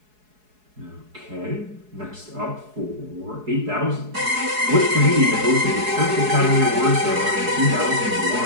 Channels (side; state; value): left; late; 4.7 ms